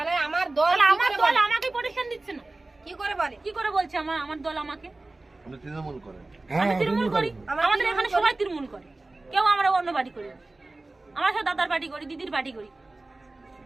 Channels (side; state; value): left; quieter; 3.0 dB